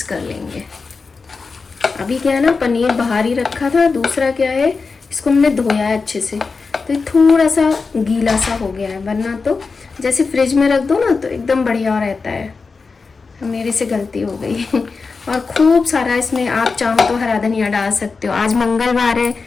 कर लेंगे। अभी क्या है ना, पनीर बाहर ही रखा था। दूसरा क्या है, इसको हमने धोया है अच्छे से, तो ये थोड़ा सा गीला सा हो गया है, वरना तो जैसे फ्रिज में रख दो ना तो एकदम बढ़िया रहता है। मेरे से गलती हो गई। और खूब सारा इसमें आप चाहो तो हरा धनिया डाल सकते हो। आज मंगलवार है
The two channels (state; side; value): quieter; right; 4.5 dB